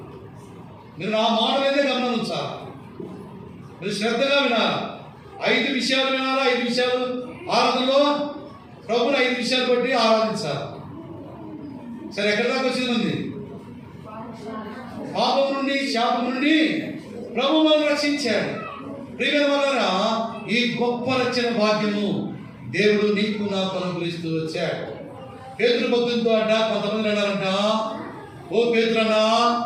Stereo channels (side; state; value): both; identical; correlation 1.00